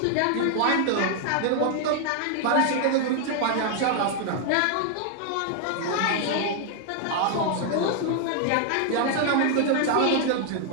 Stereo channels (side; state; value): both; different; correlation 0.00